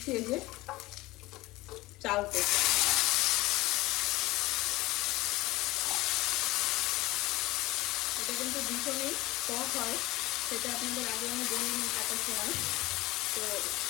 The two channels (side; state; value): right; quieter; 19.5 dB